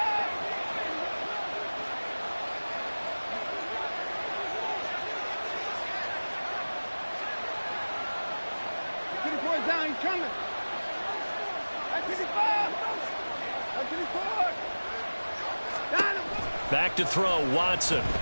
Down, he's coming. Back to throw, Watson. Able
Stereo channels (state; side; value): inverted; both; correlation -1.00